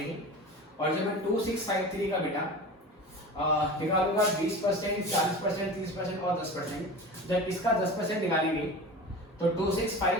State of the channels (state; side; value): normal; both; correlation 0.33